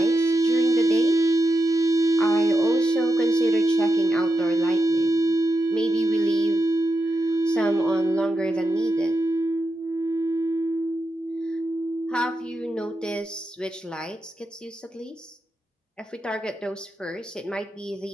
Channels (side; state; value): both; normal; correlation 0.87